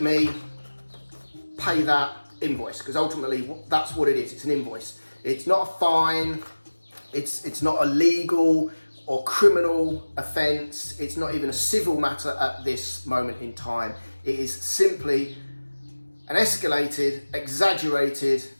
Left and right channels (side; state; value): both; inverted; correlation -1.00